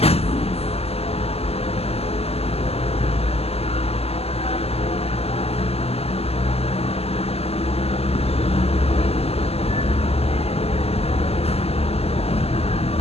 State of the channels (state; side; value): late; right; 0.29 ms